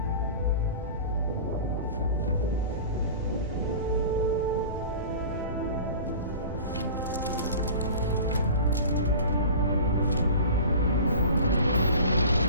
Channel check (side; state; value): both; inverted; correlation -0.38